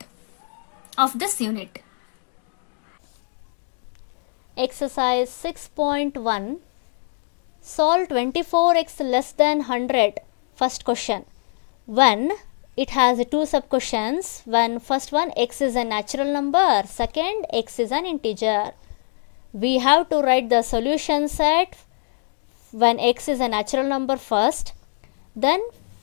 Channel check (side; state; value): right; silent; 63 dB below the other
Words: of this unit. Exercise 6.1. Solve 24x less than 100. First question. When it has two sub questions. When first one, x is a natural number, second, x is an integer. We have to write the solution set when x is a natural number first, then